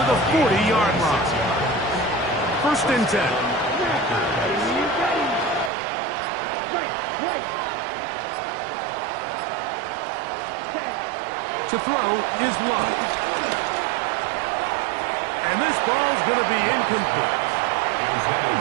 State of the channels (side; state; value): left; drops out; at 5.7 s